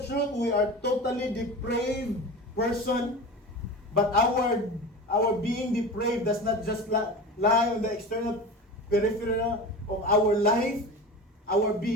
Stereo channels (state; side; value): normal; both; correlation 0.31